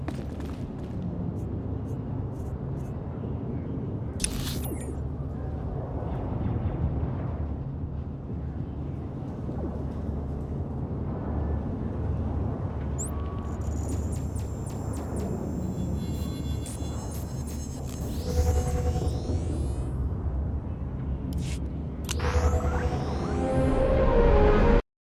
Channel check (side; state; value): both; identical; correlation 1.00